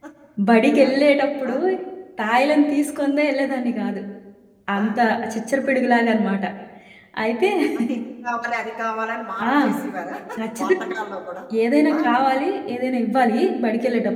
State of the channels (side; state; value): both; identical; correlation 1.00